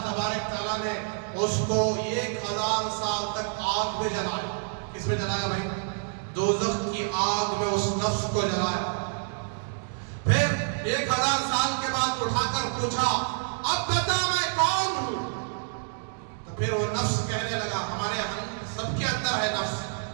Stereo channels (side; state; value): left; silent; digital silence